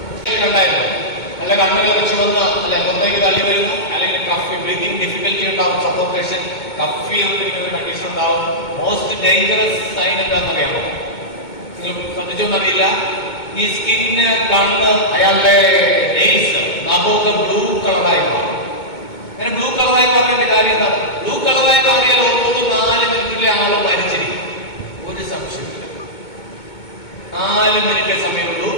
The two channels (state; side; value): late; right; 2.2 ms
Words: കണ്ടായിരുന്നു. അല്ല, കണ്ണുകൾ ചുവന്ന് അല്ലെ മുന്നേക്ക് തള്ളി വരുന്നു, അല്ലെങ്കിൽ കഫ് ബ്രീതിങ് ഡിഫിക്കൽറ്റി ഉണ്ടാവും, സഫോക്കേഷൻ, കഫ് ചെയ്യുന്ന കണ്ടീഷൻ ഉണ്ടാവും. മോസ്റ്റ് ഡേഞ്ചറസ് സൈൻ എന്താണെന്നറിയാമോ? നിങ്ങൾ ശ്രദ്ധിച്ചോന്നറിയില്ല, ഈ സ്കിന്ന്, കണ്ണ്, അയാളുടെ നെയിൽസ്, നഖമൊക്കെ ബ്ലൂ കളറായി മാറും. അങ്ങനെ ബ്ലൂ കളറായി മാറേണ്ട കാര്യം എന്താ? ബ്ലൂ കളറായി മാറിയാൽ ഓർത്തോട് 4 മിനിറ്റിലെ ആള് മരിച്ചിരിക്കും. ഒരു സംശയമില്ല, 4 മിനിറ്റേ സമയമുള്ളൂ.